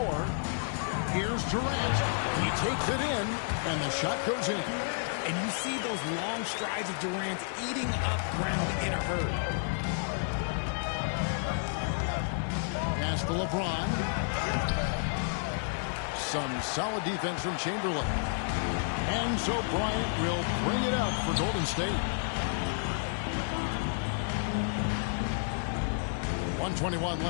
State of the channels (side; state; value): right; silent; 57 dB below the other